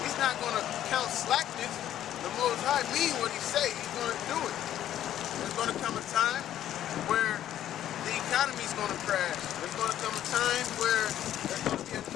He's not going to count slackness. The Most High mean what he say. He's going to do it. There's going to come a time where the economy's going to crash. There's going to come a time where there's going to be a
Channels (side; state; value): right; quieter; 11.7 dB